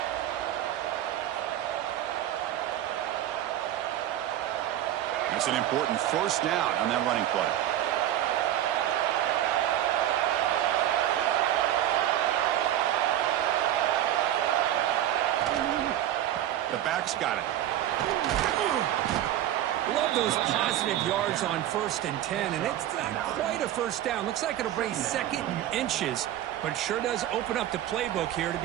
That's an important 1st down on that running play. The back's got it. Love those positive yards on 1st and 10, and it's not quite a 1st down. Looks like it'll bring 2nd and inches, but it sure does open up the playbook here to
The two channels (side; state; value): left; quieter; 12.2 dB